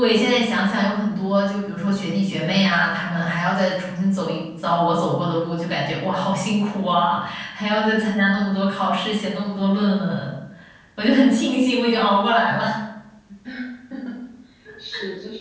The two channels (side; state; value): both; identical; correlation 1.00